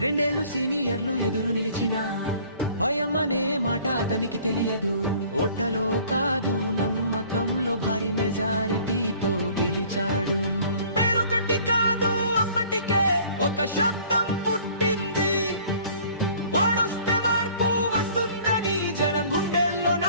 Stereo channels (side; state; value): both; inverted; correlation -0.53